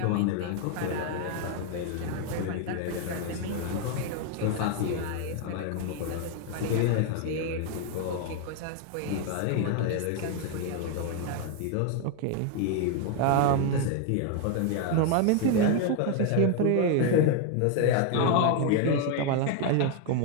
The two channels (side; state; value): both; different; correlation 0.01